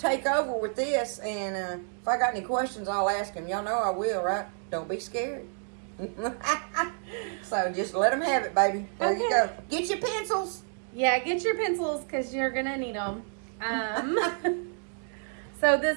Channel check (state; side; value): silent; left; 58 dB below the other